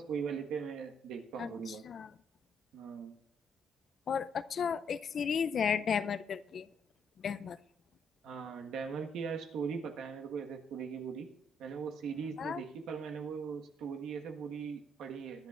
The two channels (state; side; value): normal; both; correlation 0.71